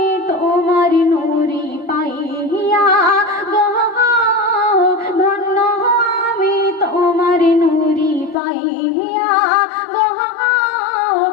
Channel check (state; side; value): drops out; right; at 8.3 s